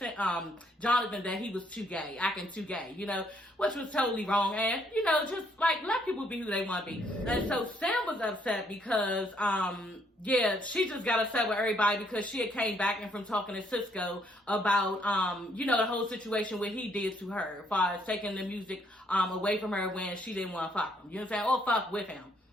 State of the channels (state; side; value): normal; both; correlation 0.69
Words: Jonathan that he was too gay, acting too gay, you know, which was totally wrong. And, you know, just like let people be who they want to be. And so Sam was upset because, yeah, she just got upset with everybody because she had came back and from talking to Cisco about, you know, the whole situation what he did to her as far as taking the music away from her when she didn't want to fuck him. You know what I'm saying? Or fuck with him.